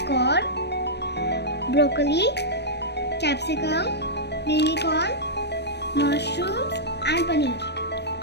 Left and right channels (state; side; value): late; right; 0.49 ms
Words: corn, broccoli, capsicum, baby corn, mushrooms and paneer.